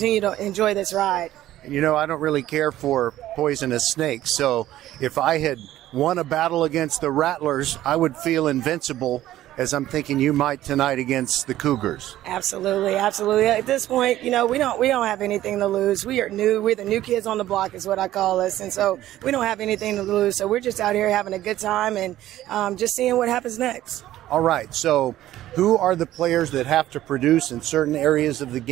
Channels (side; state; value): left; quieter; 13.9 dB